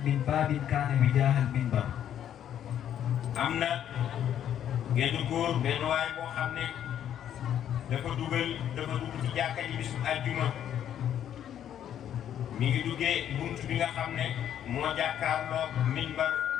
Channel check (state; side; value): quieter; right; 10.2 dB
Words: من باب كان وجاه المنبر. am na genn góor benn waay boo xam ne dafa dugg ci jàkka ji bisu àjjuma mi ngi duggee bunt bi nga xam ne moo jàkkaarloo minbar